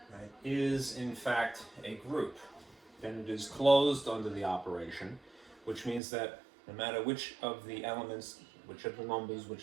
right, is in fact a group, then it is closed under the operation, which means that no matter which of the elements, which of the numbers,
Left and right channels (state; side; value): drops out; left; at 6.0 s